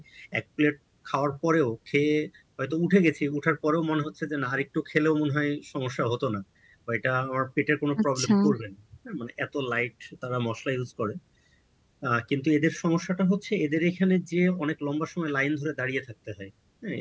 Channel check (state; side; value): identical; both; correlation 1.00